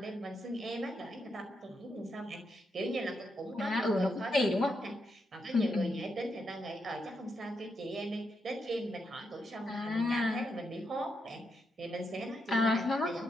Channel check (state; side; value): normal; both; correlation 0.82